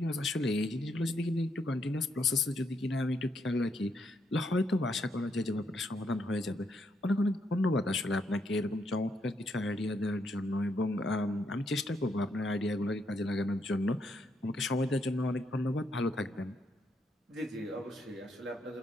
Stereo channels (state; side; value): normal; both; correlation 0.77